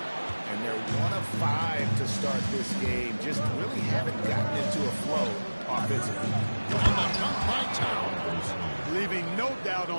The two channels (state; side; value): inverted; both; correlation -1.00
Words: And they're 1 of 5 to start this game. Just really haven't gotten into a flow offensively. And the dunk by Towns. Leaving no doubt